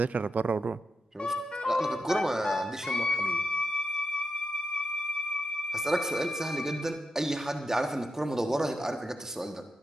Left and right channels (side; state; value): both; normal; correlation 0.87